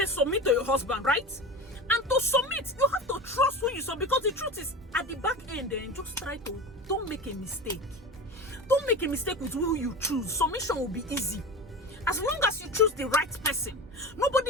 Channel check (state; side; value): normal; both; correlation 0.28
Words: submit to your husband, right? And to submit, you have to trust who you submit, because the truth is, at the back end, then just try to, don't make a mistake. Don't make a mistake with who you choose. Submission will be easy. As long as you choose the right person,